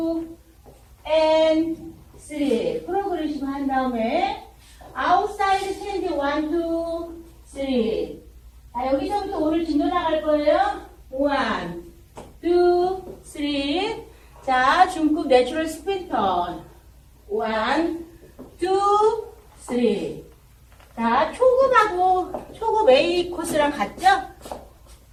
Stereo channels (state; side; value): identical; both; correlation 1.00